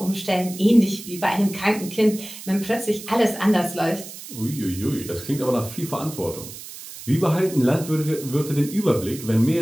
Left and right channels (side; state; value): right; noise; hiss, 13 dB below the sound